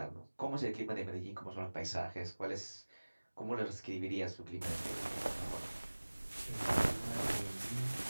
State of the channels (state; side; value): inverted; both; correlation -1.00